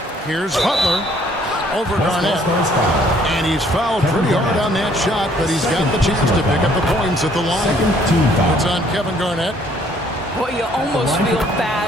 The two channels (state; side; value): normal; both; correlation 0.62